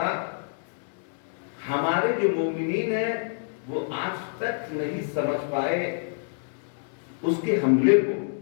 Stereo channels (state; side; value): silent; right; digital silence